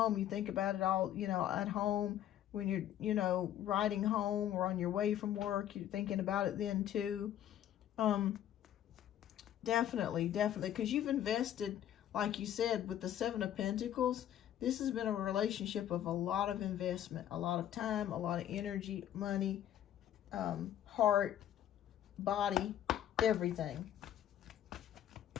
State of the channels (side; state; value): right; quieter; 11.2 dB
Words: you think about it all, at home. When you're, riding home or on your way from work, you're thinking about it then too. Definitely, because you've invested, like you said, with the Seven of Pentacles. This has been a relationship of a lot of investment, a lot of time, a lot of energy, money, heart, body, everything.